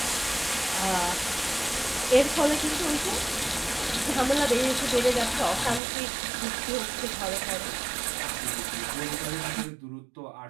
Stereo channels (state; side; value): drops out; left; at 5.8 s